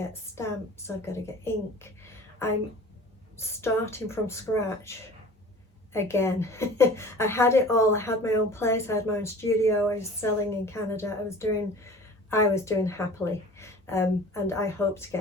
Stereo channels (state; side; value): normal; both; correlation 0.42